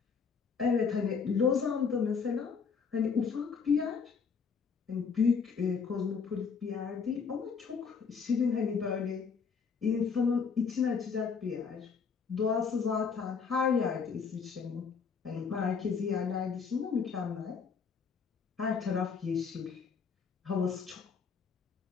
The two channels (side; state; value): right; quieter; 5.8 dB